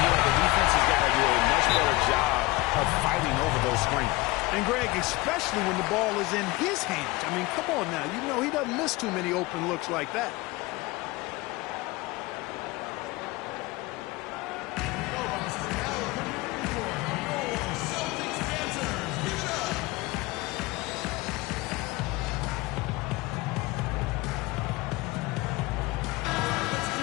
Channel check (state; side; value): quieter; right; 21.7 dB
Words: the defense has got to do a much better job of fighting over those screens. And, Greg, especially when the ball is in his hands. I mean, come on now. You know he doesn't miss too many open looks like that.